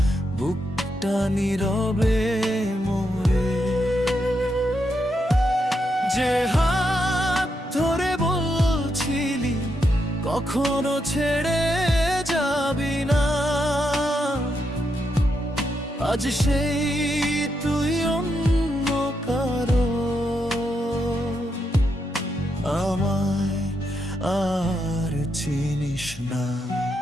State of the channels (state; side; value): normal; both; correlation 0.82